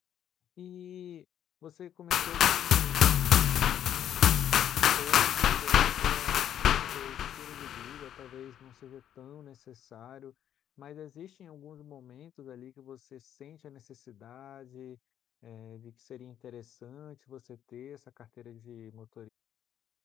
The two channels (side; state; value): right; quieter; 10.3 dB